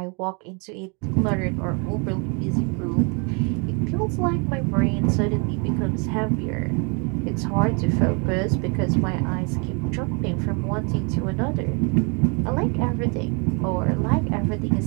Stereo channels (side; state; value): left; quieter; 34.0 dB